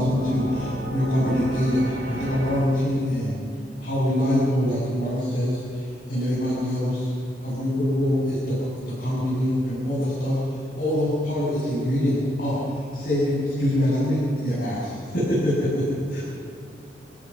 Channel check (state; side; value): normal; both; correlation 0.77